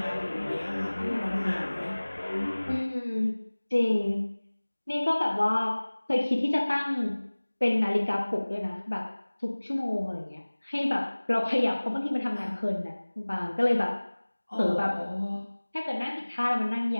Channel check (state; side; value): inverted; both; correlation -1.00